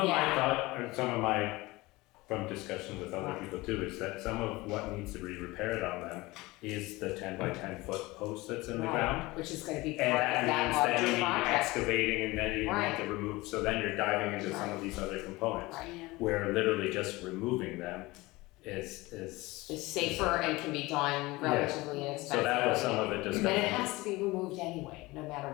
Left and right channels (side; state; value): right; quieter; 21.2 dB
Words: of my thought, or some of my, from discussion with other people too, is that some of what needs to be repaired on them is the 10 by 10 foot post that's in the ground. which is gonna be And part of that that means that you larger need project. excavating and then you Right. need to remove, so then you're diving into some Right. of these other components. Right. Yeah. Where literally just removing them is. It's safer and can be done relatively inexpensively. So that was some of it And it discussion. has to be removed anyway, no matter